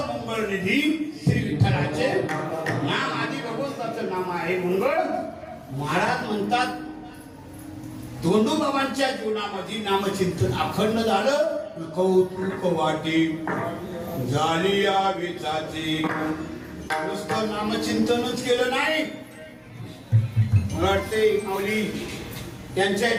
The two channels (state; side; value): identical; both; correlation 1.00